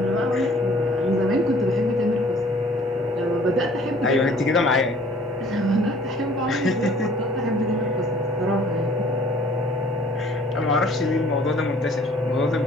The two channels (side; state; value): both; normal; correlation 0.55